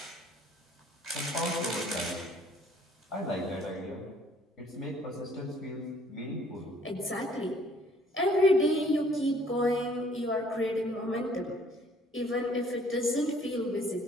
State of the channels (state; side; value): normal; both; correlation 0.59